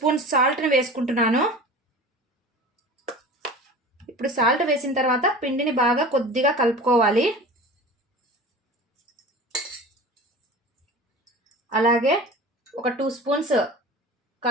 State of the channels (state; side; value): normal; both; correlation 0.36